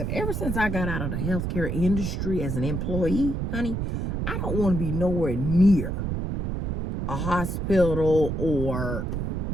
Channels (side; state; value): right; noise; rumble, 2 dB below the sound